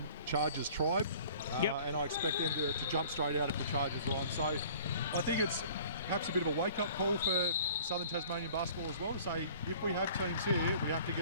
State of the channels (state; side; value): inverted; both; correlation -0.49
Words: Chargers tribe, and I expect them to jump straight out if the Chargers are on. So I think it's perhaps a bit of a wake-up call for Southern Tasmanian basketball as well, to say if we have teams here, we have to